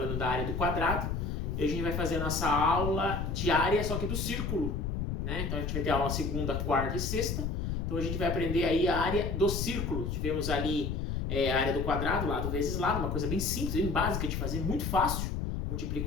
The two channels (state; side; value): noise; left; rumble, 2 dB below the sound